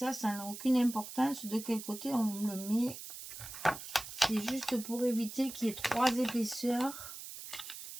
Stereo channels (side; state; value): right; noise; hiss, 11 dB below the sound